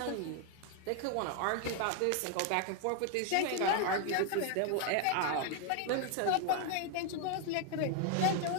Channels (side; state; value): both; different; correlation 0.00